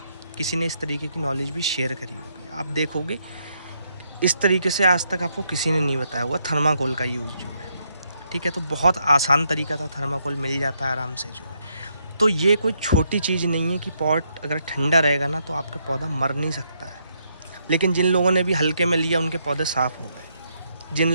किसी ने इस तरीके की नॉलेज भी शेयर करी होगी। आप देखोगे इस तरीके से आज तक आपको किसी ने नहीं बताया हुआ थर्माकोल का यूज़ जो है, ठीक है। तो बहुत आसान तरीका था, थर्माकोल मिल जाता है आराम से जो है। तो ये कोई छोटी चीज़ नहीं है कि पॉट अगर ठंडा रहेगा ना तो आपका पौधा मर नहीं सकता है। लेकिन जिन लोगों ने भी हल्के में लिया उनके पौधे साफ़ हो गए। जिन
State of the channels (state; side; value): inverted; both; correlation -0.76